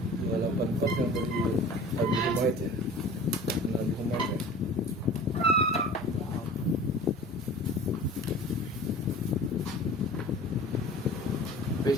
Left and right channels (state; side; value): normal; both; correlation 0.41